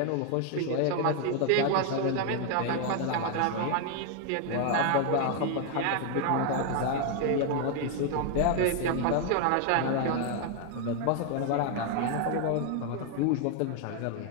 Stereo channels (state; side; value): different; both; correlation 0.01